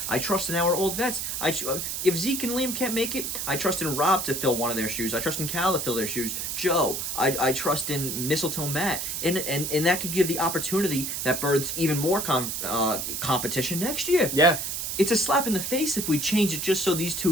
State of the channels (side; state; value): right; noise; hiss, 3 dB below the sound